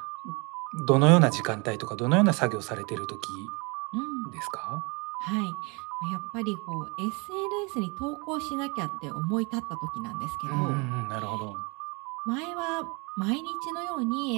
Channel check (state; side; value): quieter; left; 30.0 dB